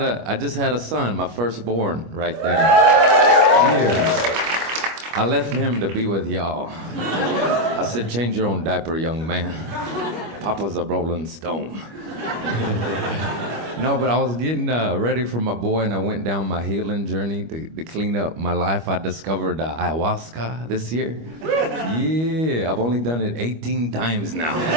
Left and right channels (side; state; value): left; late; 25 ms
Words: had a son, my firstborn, right there. Yeah. I left him to be with y'all. I said, change your own diaper, young man. Papa's a rolling stone. No, but I was getting ready for my boy, and I went down my healing journey to clean up my life. I discovered ayahuasca this year. Yeah, I've only done it 18 times now.